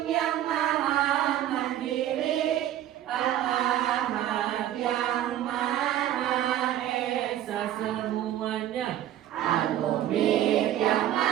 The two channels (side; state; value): left; quieter; 12.1 dB